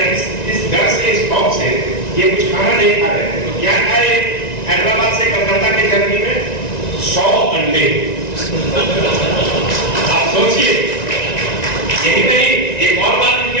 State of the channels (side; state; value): right; late; 1.9 ms